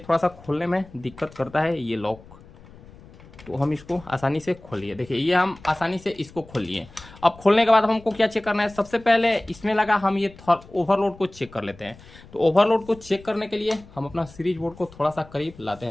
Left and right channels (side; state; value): left; noise; rumble, 21 dB below the sound